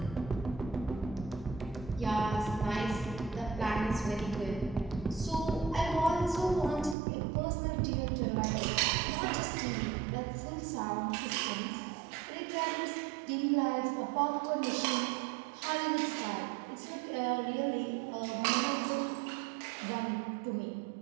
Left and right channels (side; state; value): left; drops out; at 7.0 s